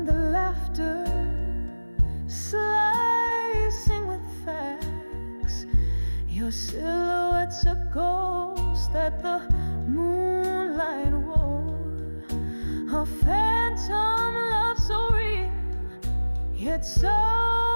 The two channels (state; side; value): inverted; both; correlation -1.00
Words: the laughter, slicing with facts. Your silhouette's a ghost that the moonlight wore, a phantom love so real, yet so